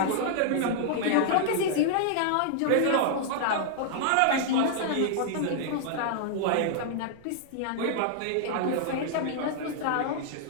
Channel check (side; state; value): both; different; correlation -0.01